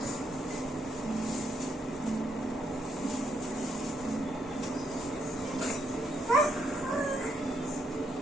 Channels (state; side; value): normal; both; correlation 0.75